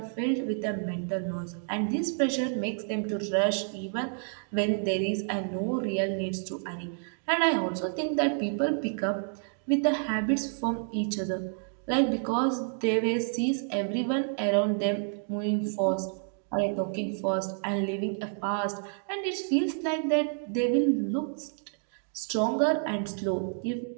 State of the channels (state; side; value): silent; left; 58 dB below the other